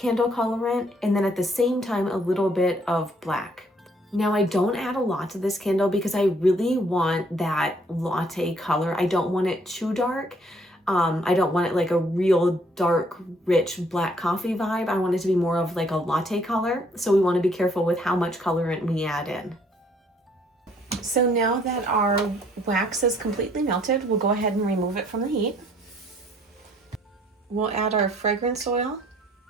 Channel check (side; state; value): both; normal; correlation 0.64